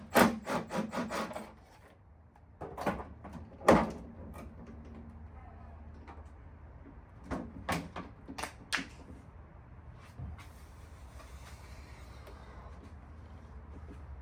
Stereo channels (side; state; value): both; identical; correlation 1.00